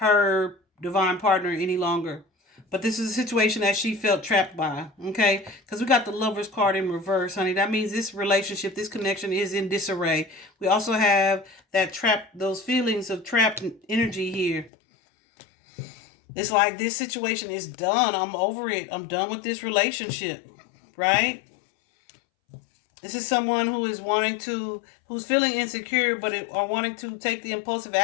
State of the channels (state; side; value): drops out; right; at 14.7 s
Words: divine partner any longer. But this is a situation that she felt trapped by, okay? Because we got the Lover's card in reverse, honey. That means this relationship, this connection is in disarray. We also have that trap, those feelings of trapped energy here. It's like this situation is done. I'm over it. I'm done with this relationship, right? This is someone who is who's feeling insecure, but are wanting to take the impulsive